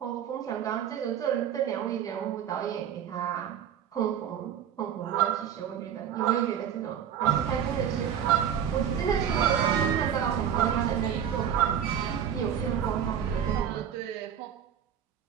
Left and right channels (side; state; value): left; quieter; 9.0 dB